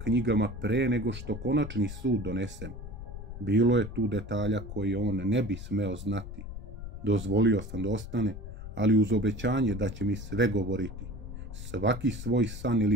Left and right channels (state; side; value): noise; left; rumble, 10 dB below the sound